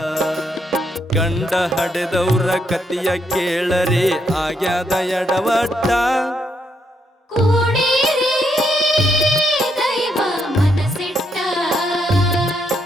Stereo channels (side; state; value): both; normal; correlation 0.77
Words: ಗಂಡ ಹಡೆದವ್ರ ಕತಿಯ ಕೇಳರಿ ಆಗ್ಯಾದ ಎಡವಟ್ಟ ಕೂಡಿರಿ ದೈವ ಮನಸಿಟ್ಟ